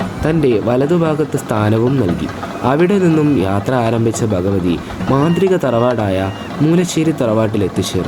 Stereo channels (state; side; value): identical; both; correlation 1.00